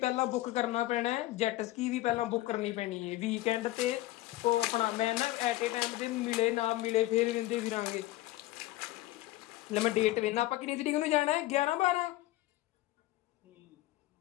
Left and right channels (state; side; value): quieter; right; 17.4 dB